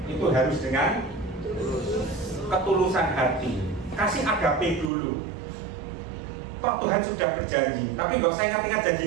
itu harus dengan ketulusan hati. Kasih agape dulu. Toh Tuhan sudah berjanji. Tapi nggak usah ingat-ingat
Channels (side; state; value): left; drops out; at 4.9 s